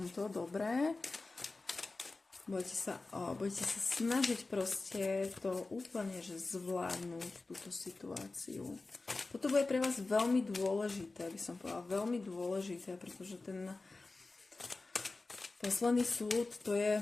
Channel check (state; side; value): quieter; right; 3.5 dB